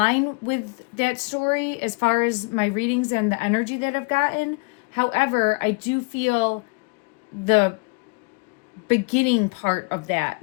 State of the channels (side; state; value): right; quieter; 31.3 dB